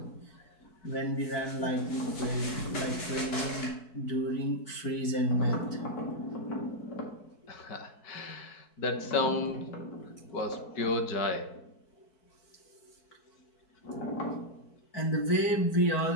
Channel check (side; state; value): right; late; 4.6 ms